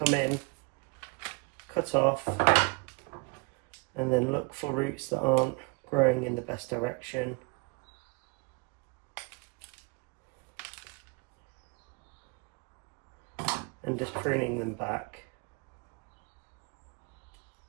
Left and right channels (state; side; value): quieter; left; 32.0 dB